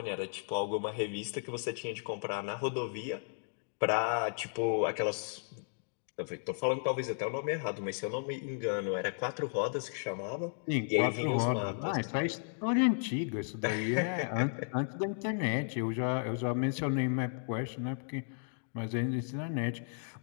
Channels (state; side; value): silent; right; digital silence